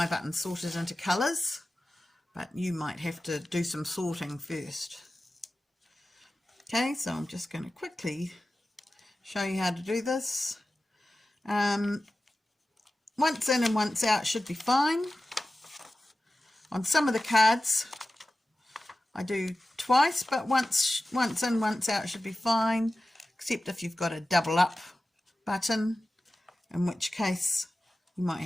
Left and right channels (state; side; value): normal; both; correlation 0.95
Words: buttons sorted into colours, but you might have to do some sorting first. Okay, so I'm just going to quickly show you how to do this. Once in and once out should be fine. On some of the cards I do twice, but once in, once out should be fine, except if you've got a double up button, in which case you might